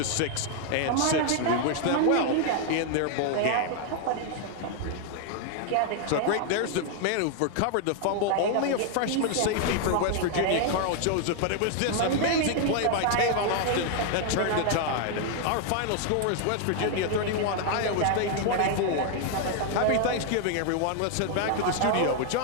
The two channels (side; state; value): both; different; correlation 0.00